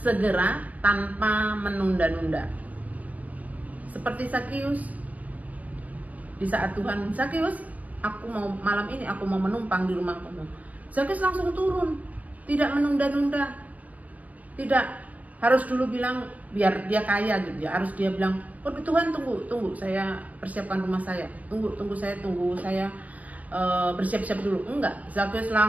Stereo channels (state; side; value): late; left; 0.078 ms